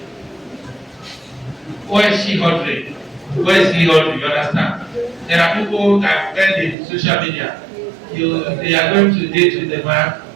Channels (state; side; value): drops out; left; at 6.8 s